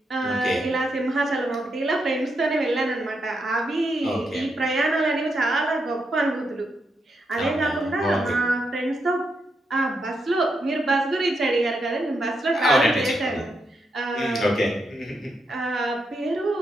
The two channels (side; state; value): both; normal; correlation 0.82